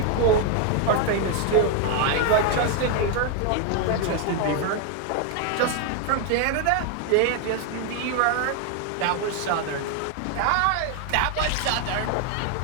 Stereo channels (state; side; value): different; both; correlation 0.01